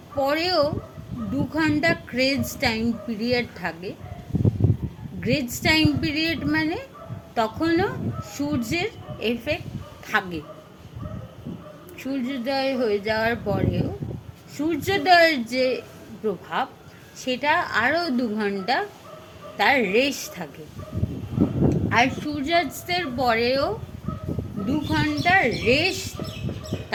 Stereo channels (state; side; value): identical; both; correlation 1.00